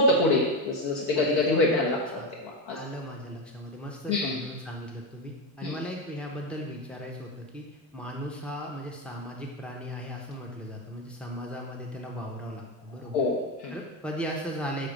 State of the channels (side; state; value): both; normal; correlation 0.12